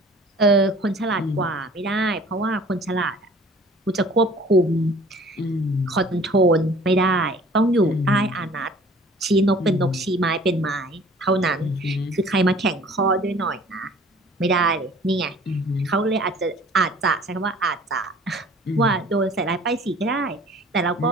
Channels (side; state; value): both; normal; correlation 0.50